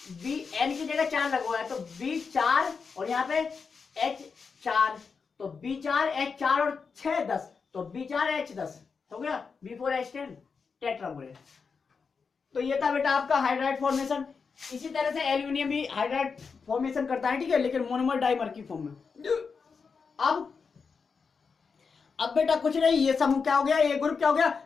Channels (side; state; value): right; quieter; 5.4 dB